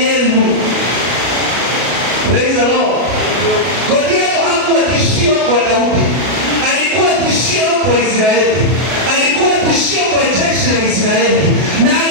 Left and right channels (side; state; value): left; late; 33 ms